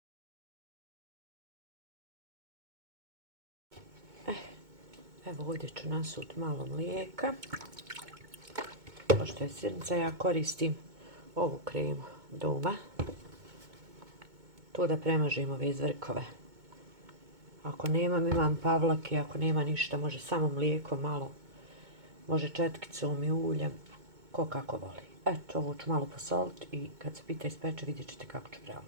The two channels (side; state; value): left; late; 2.2 ms